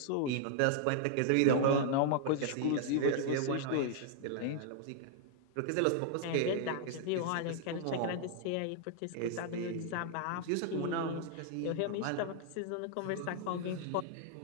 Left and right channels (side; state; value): both; different; correlation -0.01